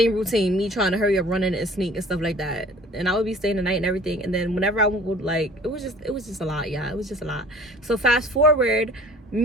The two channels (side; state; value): both; normal; correlation 0.48